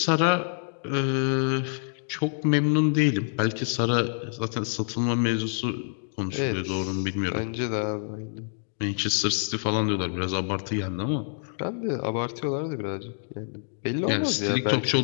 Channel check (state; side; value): silent; right; digital silence